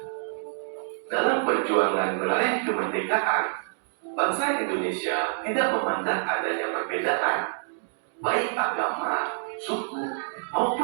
Dalam perjuangan meraih kemerdekaan, bangsa Indonesia tidak memandang adanya perbedaan, baik agama, suku,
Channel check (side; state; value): left; silent; digital silence